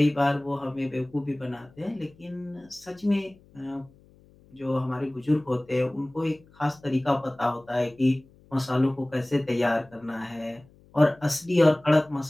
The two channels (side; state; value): left; noise; hum, 28 dB below the sound